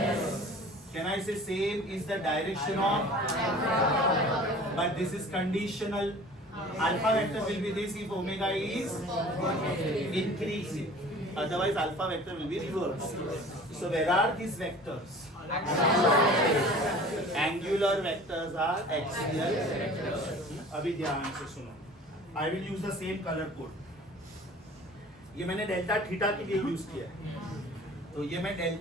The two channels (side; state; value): both; normal; correlation 0.45